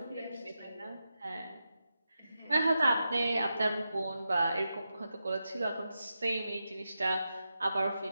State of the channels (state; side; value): inverted; both; correlation -0.89